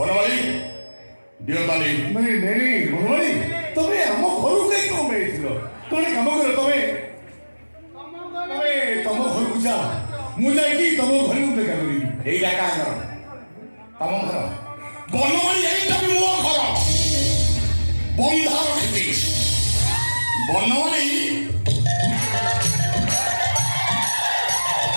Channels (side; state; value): both; inverted; correlation -1.00